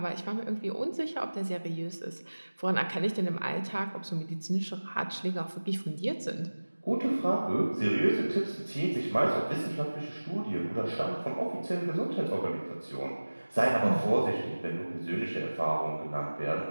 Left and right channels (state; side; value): inverted; both; correlation -1.00